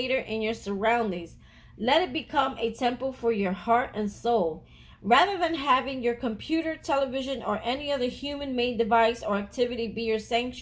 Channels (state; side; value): identical; both; correlation 1.00